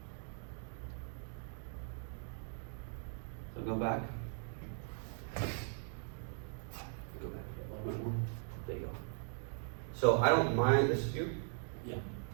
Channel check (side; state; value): left; silent; 51 dB below the other